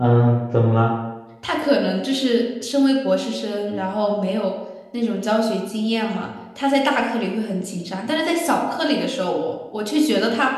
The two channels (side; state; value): both; identical; correlation 1.00